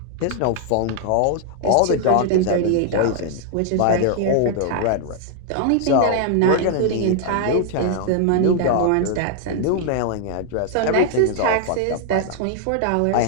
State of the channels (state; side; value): different; both; correlation 0.00